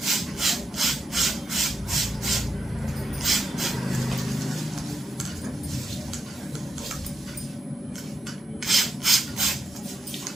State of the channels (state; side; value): normal; both; correlation 0.84